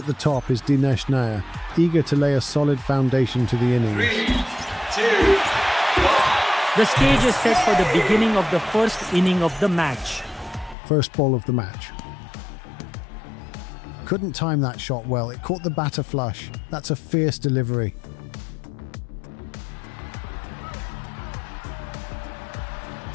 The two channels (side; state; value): right; drops out; at 10.8 s